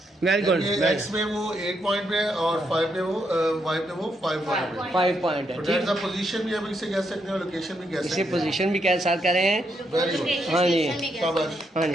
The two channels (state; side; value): normal; both; correlation 0.78